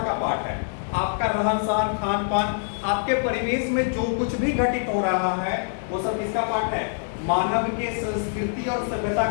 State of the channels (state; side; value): silent; right; digital silence